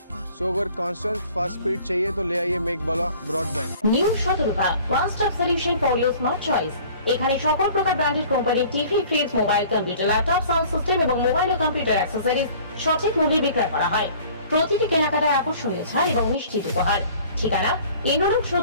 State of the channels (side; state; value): both; inverted; correlation -0.49